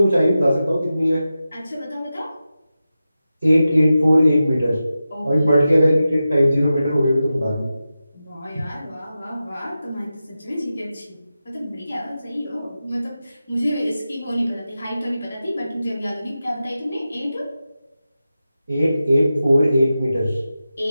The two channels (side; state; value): both; inverted; correlation -0.93